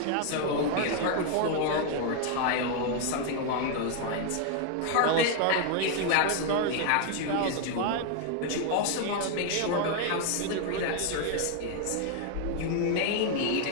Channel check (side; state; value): both; different; correlation 0.00